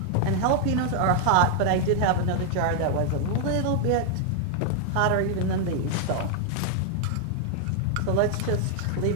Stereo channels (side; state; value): both; different; correlation 0.00